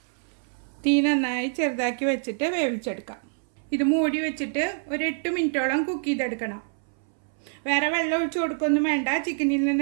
തീ നന്നായി ചെറുതാക്കി വെച്ചിട്ട് വേവിച്ചെടുക്കാം. ഇത് മൂടി വെച്ചിട്ട് ഒരു 8 മിനിറ്റോളം കുക്ക് ചെയ്തെടുക്കണം. വേറെ വെള്ളം ഒഴിച്ച് കൊടുക്കൊന്നും വേണ്ട. ചിക്കനിൽ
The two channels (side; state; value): left; silent; 61 dB below the other